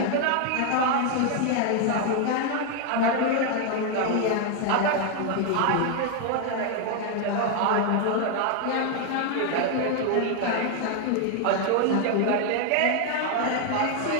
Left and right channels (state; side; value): different; both; correlation 0.00